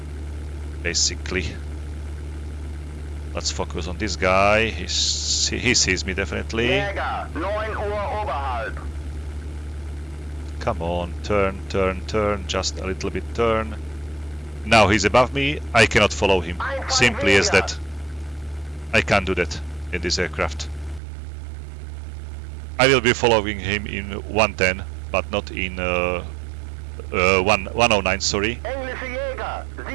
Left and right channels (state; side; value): drops out; left; at 21.0 s